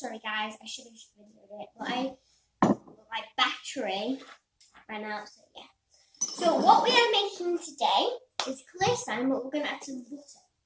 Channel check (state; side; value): identical; both; correlation 1.00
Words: guys. I should have videoed it, but my battery ran out, so yeah. So what we are making today is clear slime, but we're going to add some butter.